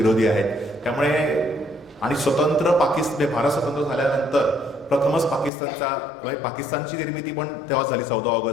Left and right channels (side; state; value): right; drops out; at 5.5 s